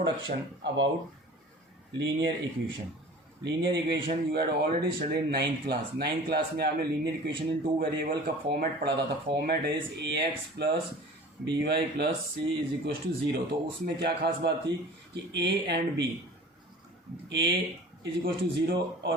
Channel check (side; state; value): both; normal; correlation 0.42